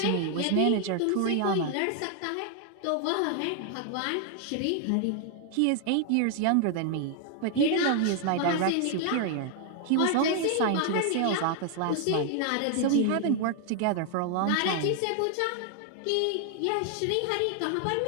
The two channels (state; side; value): different; both; correlation 0.00